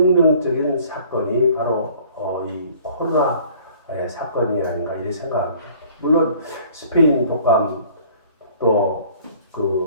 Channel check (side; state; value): both; inverted; correlation -0.53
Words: 사건이 바로 이 코로나 사건이 아닌가 이렇게 생각합니다. 물론 스페인 독감, 또